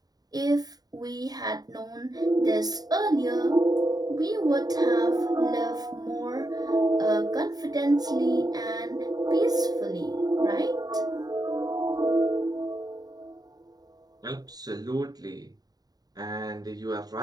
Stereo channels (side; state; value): left; late; 0.19 ms